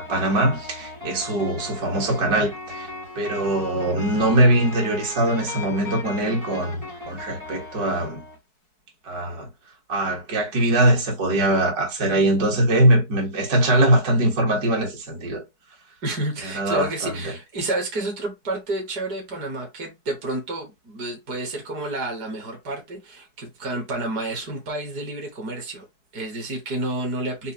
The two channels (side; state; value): left; late; 4.6 ms